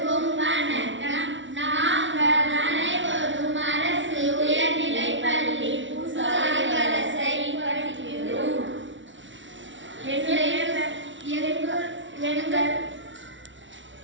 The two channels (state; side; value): late; left; 0.55 ms